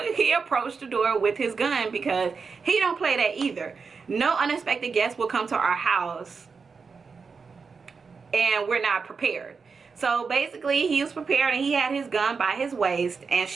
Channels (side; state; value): left; quieter; 5.1 dB